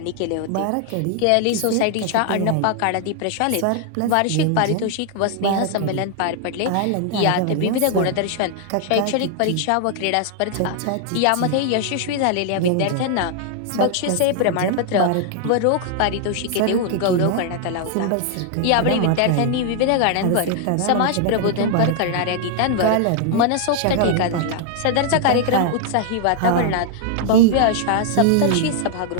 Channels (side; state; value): both; different; correlation 0.00